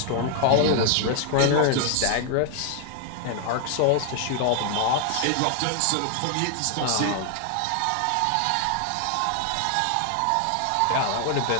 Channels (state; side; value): different; both; correlation 0.00